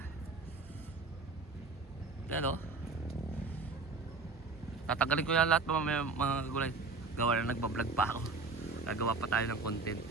Yan tatanggalin ko yan lahat mga kagulay. Gawa na nagbablog pa ako. Gagawa pa tayo ng content.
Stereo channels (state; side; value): quieter; left; 4.1 dB